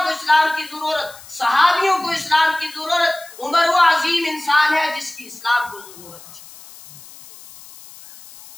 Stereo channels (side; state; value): left; noise; hiss, 19 dB below the sound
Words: کو اسلام کی ضرورت، صحابیوں کو اسلام کی ضرورت۔ عمر وہ عظیم انسان ہے جس کی اسلام کو ضرورت تھی۔